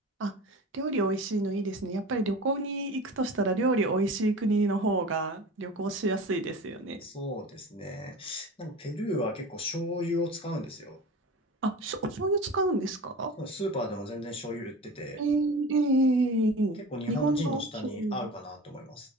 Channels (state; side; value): normal; both; correlation 0.35